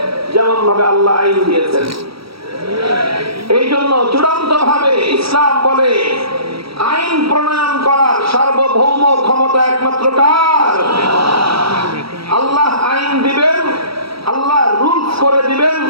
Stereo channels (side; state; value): left; late; 0.75 ms